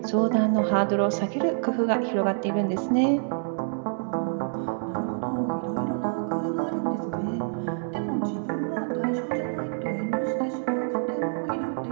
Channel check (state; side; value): silent; left; digital silence